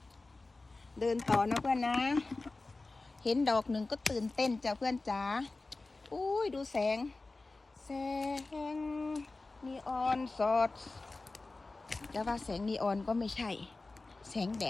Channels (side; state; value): right; quieter; 3.4 dB